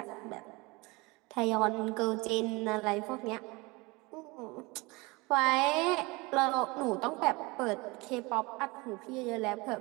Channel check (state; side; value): quieter; left; 24.9 dB